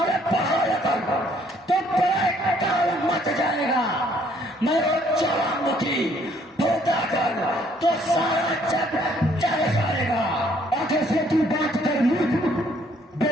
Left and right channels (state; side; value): normal; both; correlation 0.64